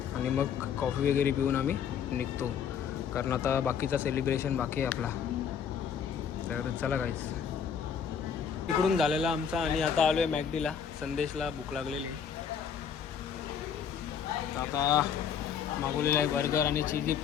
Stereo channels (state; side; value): quieter; right; 7.6 dB